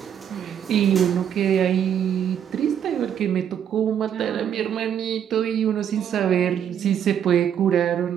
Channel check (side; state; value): left; quieter; 9.1 dB